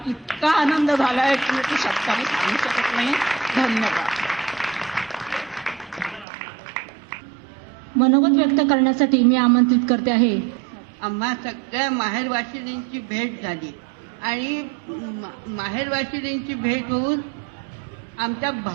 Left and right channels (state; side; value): drops out; left; at 6.2 s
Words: इतका आनंद झालाय की मी ते शब्दाने सांगू शकत नाही. धन्यवाद. मनोगत व्यक्त करण्यासाठी मी आमंत्रित करते आहे. आम्हा सगळ्या माहेरवाशिणींची भेट झाली आणि माहेरवाशिणींची भेट होऊन आमच्या